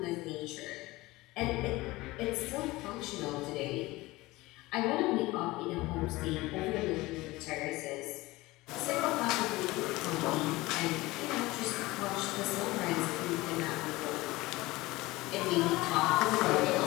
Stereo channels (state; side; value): quieter; right; 20.1 dB